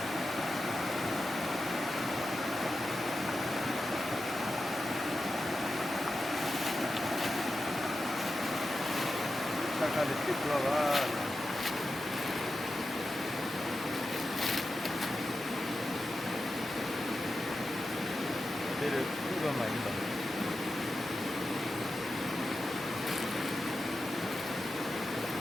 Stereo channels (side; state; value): both; normal; correlation 0.91